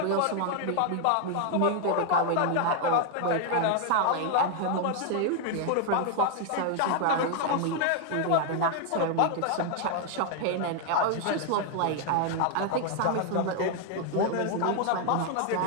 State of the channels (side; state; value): both; different; correlation 0.00